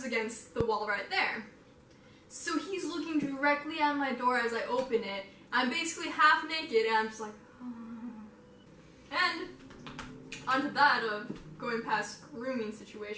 against the wall right there. So he's looking directly at my door as I open it. I'm basically half naked and I'm just like, oh. And onto that of going past rooming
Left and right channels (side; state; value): both; identical; correlation 1.00